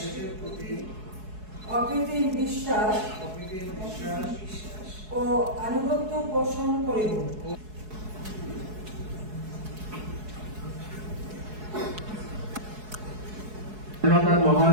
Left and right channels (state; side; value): late; left; 4.7 ms